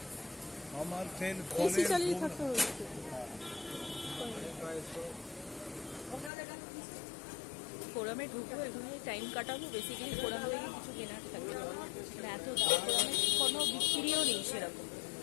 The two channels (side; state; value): right; drops out; at 6.3 s